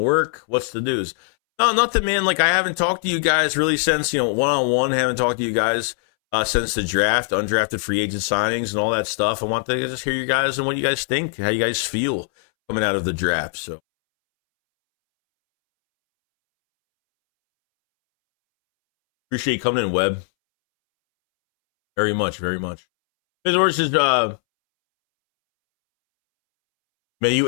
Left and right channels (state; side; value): silent; right; 65 dB below the other